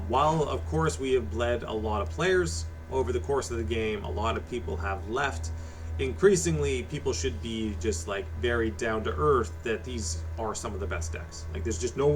of course we have bled a lot of players over the course of the game, a lot of people have left. Increasingly, people should be just like very down to earth that these are some of the best decks. Like there's just no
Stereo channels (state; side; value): identical; both; correlation 1.00